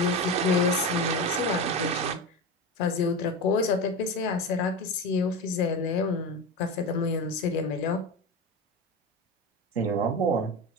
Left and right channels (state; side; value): normal; both; correlation 0.23